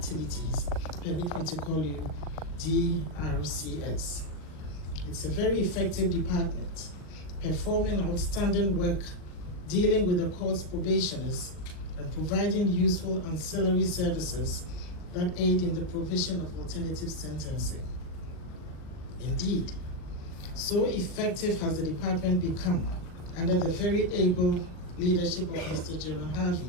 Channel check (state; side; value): late; right; 40 ms